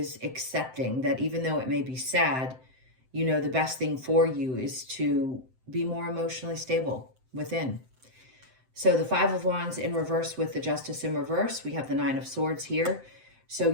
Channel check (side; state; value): left; late; 7.8 ms